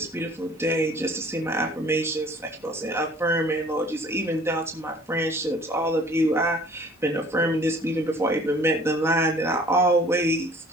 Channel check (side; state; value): both; normal; correlation 0.52